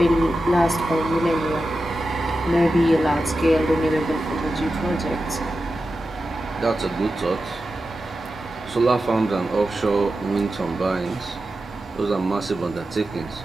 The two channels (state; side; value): normal; both; correlation 0.92